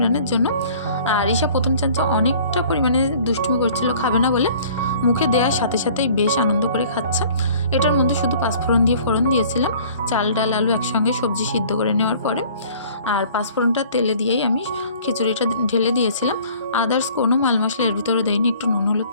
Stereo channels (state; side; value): inverted; both; correlation -0.51